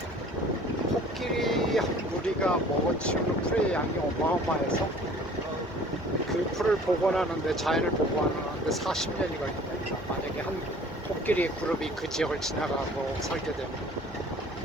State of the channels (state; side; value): normal; both; correlation 0.50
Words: 코끼리 한 무리가 먹어치우는 풀의 양이 어마어마해서 그 그 풀을 복원하는데, 자연을 복원하는데 40년이 걸린다. 만약에 한 코끼리 그룹이 그 지역을 지나가고 살게 되면.